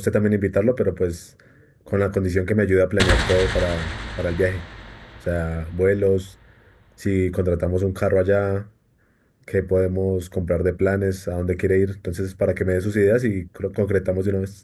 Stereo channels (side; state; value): both; identical; correlation 1.00